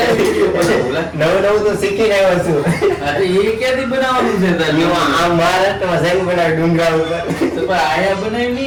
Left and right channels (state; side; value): identical; both; correlation 1.00